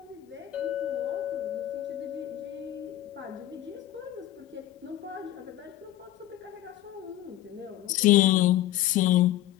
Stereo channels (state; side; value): quieter; right; 13.9 dB